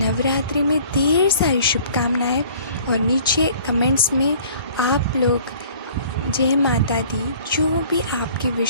में ढेर सारी शुभकामनाएं, और नीचे कमेंट्स में आप लोग जय माता दी जो भी आपकी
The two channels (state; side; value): inverted; both; correlation -0.52